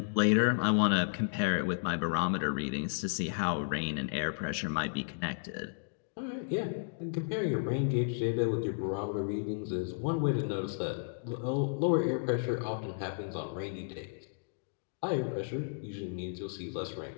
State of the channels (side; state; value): right; silent; digital silence